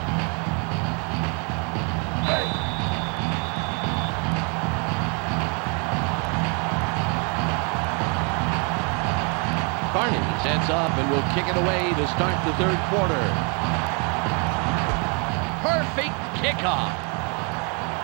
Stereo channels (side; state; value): left; quieter; 35.2 dB